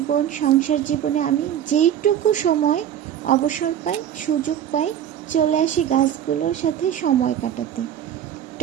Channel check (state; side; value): quieter; left; 10.2 dB